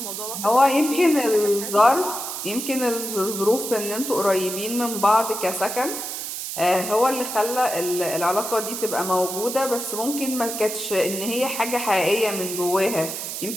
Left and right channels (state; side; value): noise; right; hiss, 6 dB below the sound